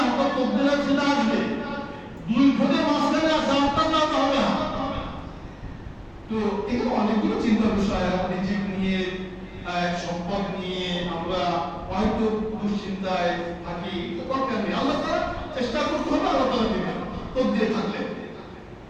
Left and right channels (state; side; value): identical; both; correlation 1.00